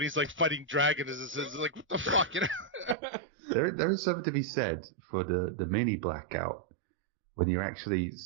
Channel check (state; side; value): drops out; left; at 3.0 s